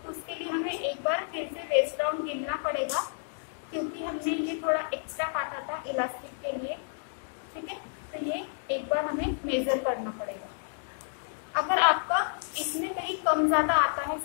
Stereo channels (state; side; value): silent; right; digital silence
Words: तो उसके लिए हमें एक बार फिर से वेस्ट राउंड गिनना पड़ेगा, क्योंकि हमने ये थोड़ा एक्स्ट्रा काटा था इलास्टिक के लिए। ठीक है, तो ये एक बार हमें मेजर करना पड़ेगा। अगर आपका इसमें कहीं कम ज्यादा आता है,